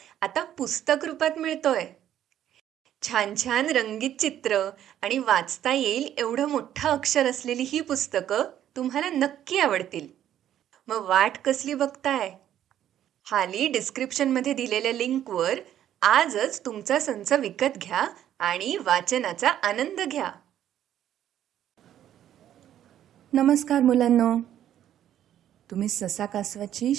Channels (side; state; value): left; quieter; 11.1 dB